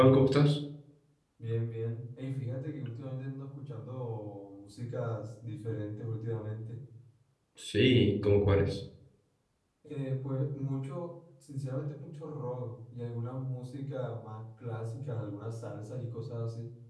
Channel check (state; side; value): identical; both; correlation 1.00